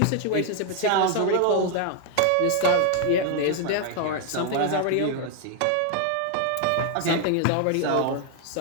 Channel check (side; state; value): both; different; correlation 0.00